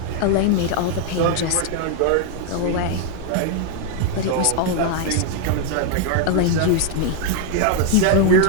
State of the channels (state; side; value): different; both; correlation 0.00